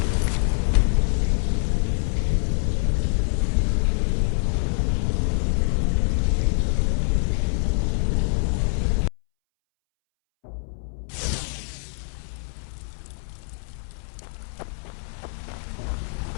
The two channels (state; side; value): silent; right; 62 dB below the other